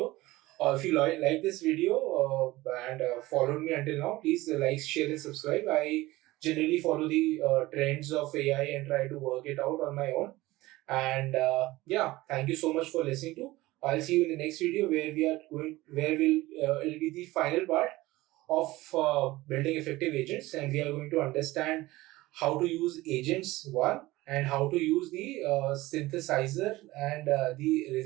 If you like this video and followed me until now, please like, share, and subscribe. I generally follow the trends of AI and try to work it out on my own. And yeah, thank you so much for listening to. I'll see you in the next video where it'll be the final part of building effective agents, and we are going to understand how to use agents one and how to use the synthesizer and the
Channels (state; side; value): quieter; left; 18.8 dB